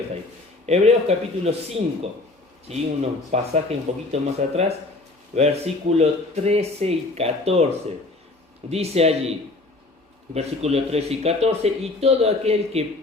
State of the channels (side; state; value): right; quieter; 3.1 dB